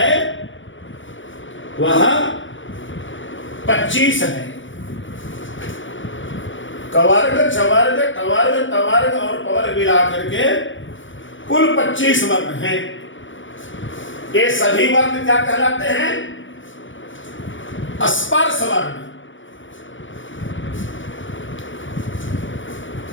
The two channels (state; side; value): late; right; 0.56 ms